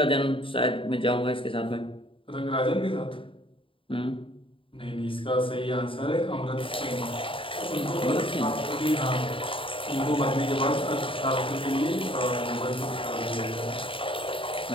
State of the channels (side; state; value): right; late; 0.25 ms